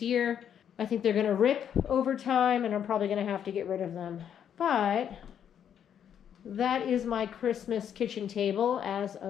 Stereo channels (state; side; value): quieter; right; 9.0 dB